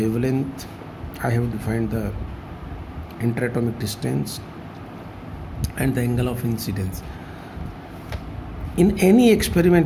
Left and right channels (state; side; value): identical; both; correlation 1.00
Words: I have defined the interatomic distance and the angle of incidence. In any